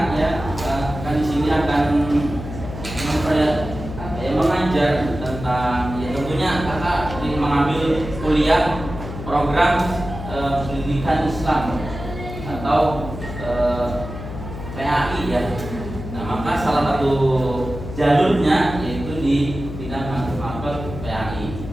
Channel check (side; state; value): left; noise; hum, 9 dB below the sound